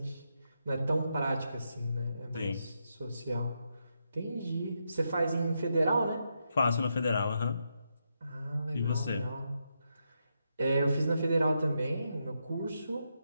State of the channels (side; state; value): both; inverted; correlation -0.83